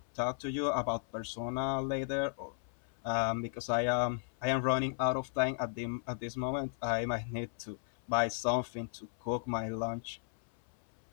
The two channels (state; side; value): silent; right; 54 dB below the other